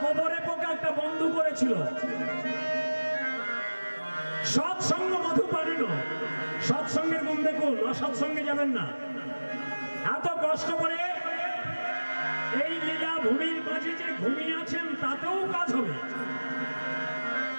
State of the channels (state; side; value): inverted; both; correlation -1.00